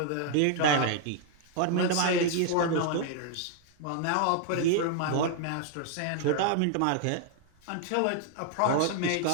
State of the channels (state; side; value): different; both; correlation 0.00